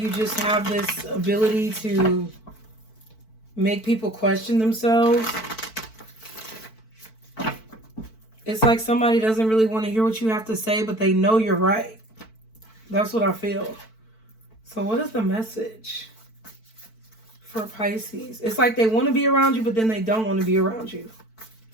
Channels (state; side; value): late; right; 4.5 ms